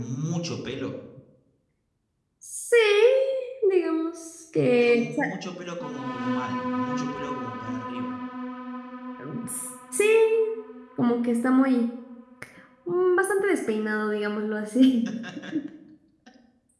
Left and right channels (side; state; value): both; identical; correlation 1.00